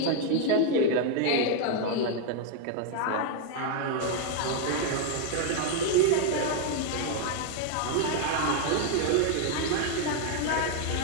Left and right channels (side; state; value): both; different; correlation 0.00